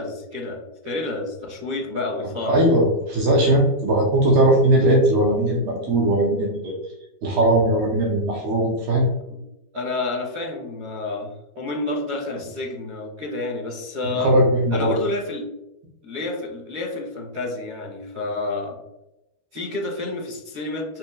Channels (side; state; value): left; late; 12 ms